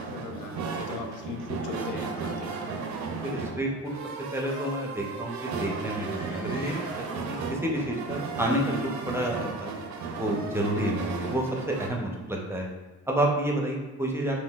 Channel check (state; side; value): normal; both; correlation 0.40